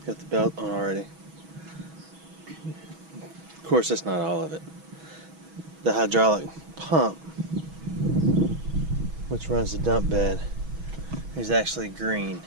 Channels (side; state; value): left; late; 6.2 ms